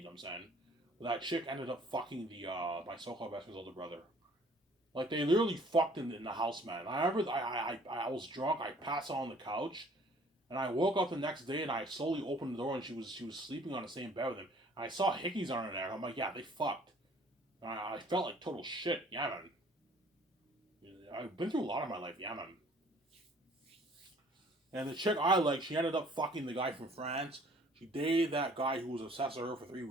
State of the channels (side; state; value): both; normal; correlation 0.55